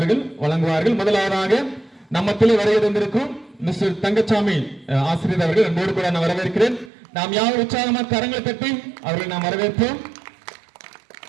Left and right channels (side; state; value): left; drops out; at 6.9 s